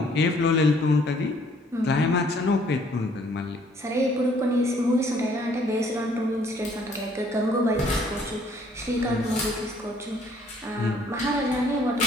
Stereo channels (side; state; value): both; normal; correlation 0.62